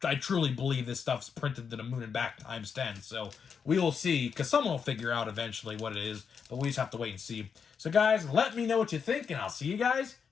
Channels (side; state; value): right; quieter; 6.4 dB